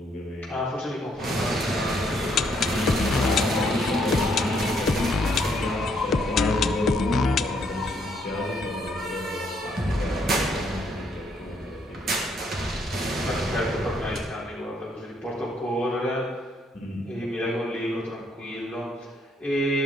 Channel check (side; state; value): both; normal; correlation 0.70